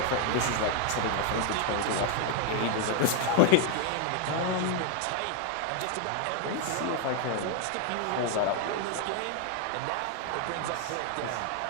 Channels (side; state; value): both; different; correlation 0.01